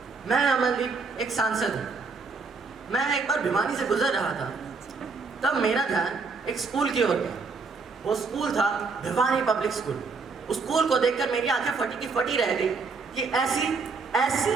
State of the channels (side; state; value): left; quieter; 4.5 dB